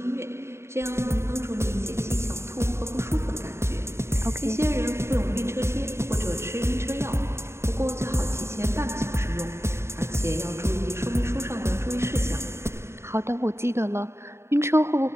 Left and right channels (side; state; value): left; late; 0.13 ms